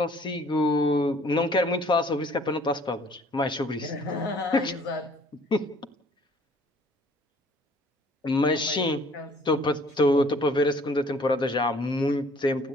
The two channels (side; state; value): both; normal; correlation 0.57